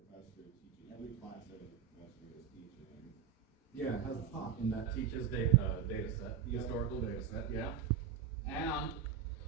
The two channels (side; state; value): left; quieter; 8.2 dB